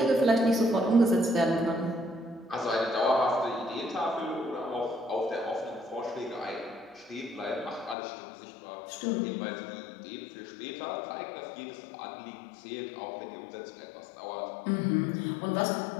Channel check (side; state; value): right; drops out; at 8.0 s